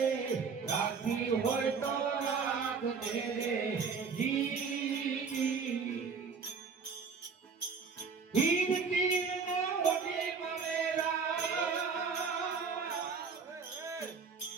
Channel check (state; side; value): quieter; left; 5.4 dB